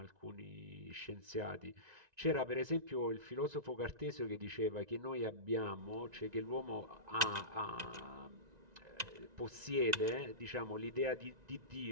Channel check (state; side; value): late; left; 1.9 ms